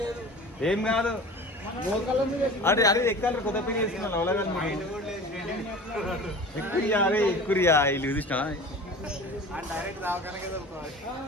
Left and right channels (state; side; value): normal; both; correlation 0.38